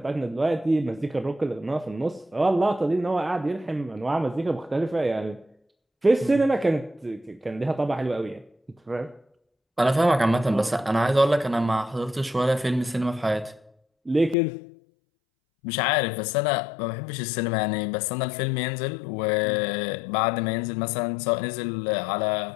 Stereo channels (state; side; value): drops out; right; at 14.4 s